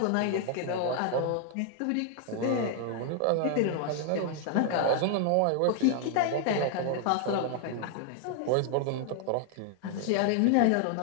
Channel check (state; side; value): different; both; correlation 0.00